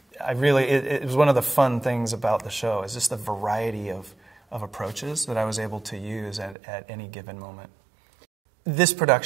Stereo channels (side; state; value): left; drops out; at 6.6 s